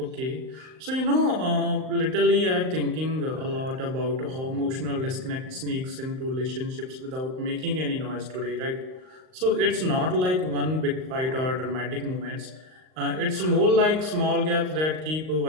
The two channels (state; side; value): late; left; 38 ms